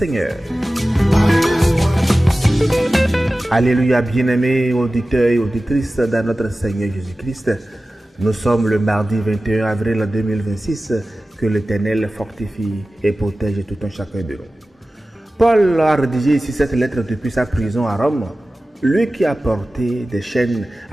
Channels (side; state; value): both; normal; correlation 0.96